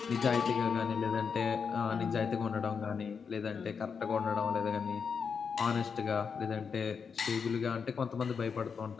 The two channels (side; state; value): right; quieter; 6.0 dB